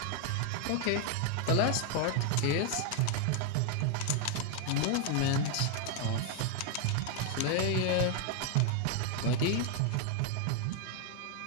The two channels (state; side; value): different; both; correlation 0.01